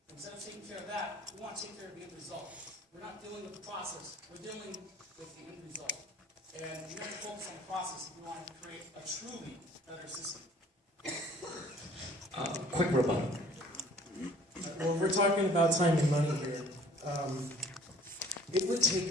instead of taking care of that, we want to take care of the end result. We're not dealing with the process, we're dealing with the end result. And we have to focus on the process if we want to create a truly better system. Quick rebuttal. Well, we're talking about time and money here. It would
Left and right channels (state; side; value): normal; both; correlation 0.53